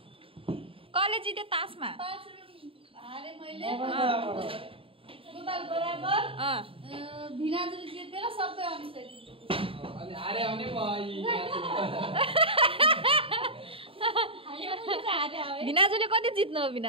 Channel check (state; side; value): late; left; 0.27 ms